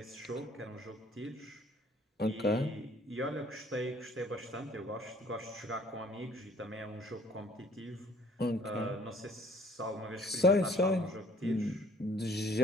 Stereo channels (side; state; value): both; normal; correlation 0.56